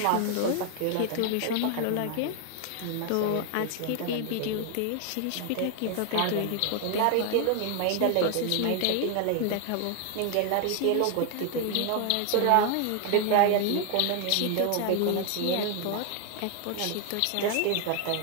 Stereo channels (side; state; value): both; different; correlation 0.00